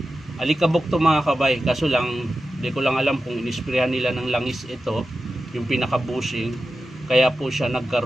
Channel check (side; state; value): both; normal; correlation 0.92